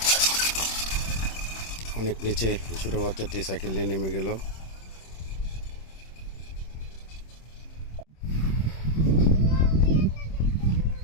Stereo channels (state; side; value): late; right; 26 ms